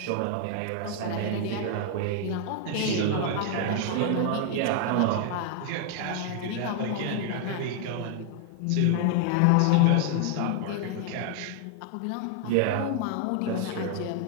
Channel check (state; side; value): different; both; correlation 0.00